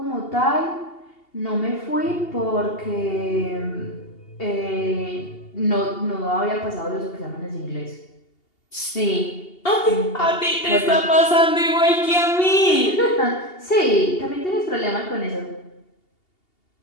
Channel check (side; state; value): right; late; 2.8 ms